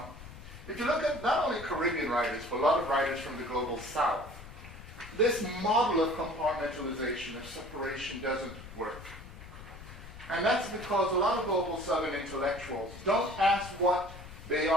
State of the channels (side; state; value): left; noise; rumble, 15 dB below the sound